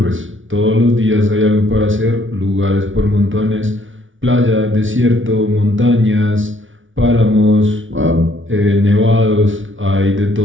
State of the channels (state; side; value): late; left; 0.57 ms